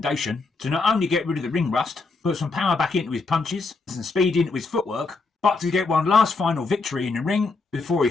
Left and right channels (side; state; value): right; quieter; 3.9 dB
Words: to not only get rid of the ring rust, put some power back into his punches, some speed into his footwork, but to get one last final victory in the ring before he